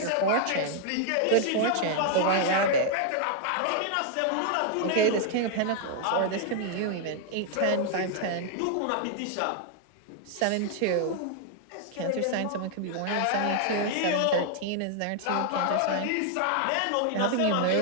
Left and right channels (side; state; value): both; different; correlation 0.00